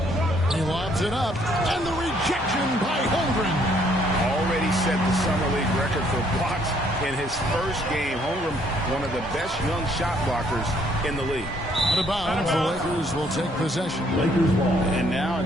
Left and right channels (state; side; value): normal; both; correlation 0.66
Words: He lobs it up, and the rejection by Holmgren. Already set the Summer League record for blocks in his first game. Holmgren, one of the best young shot blockers in the league. Out of bounds, the Lakers will take possession. Lakers ball. And now a